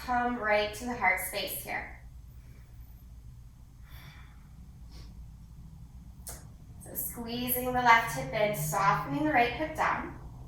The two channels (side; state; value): both; identical; correlation 1.00